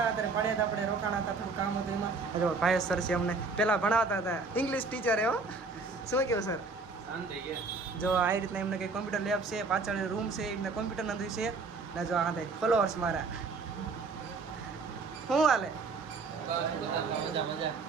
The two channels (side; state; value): left; quieter; 4.1 dB